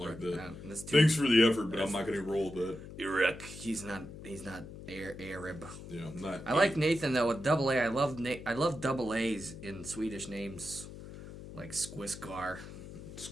that. Thanks for the effort, but I'm not going to roll with that. Erik, he's not Arab. Yeah, I'm not. I like Nathan though with double A. I love double A's in Swedish names, like Squisgar.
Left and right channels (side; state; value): left; noise; hum, 13 dB below the sound